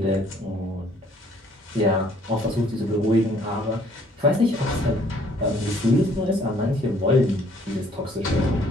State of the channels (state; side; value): normal; both; correlation 0.61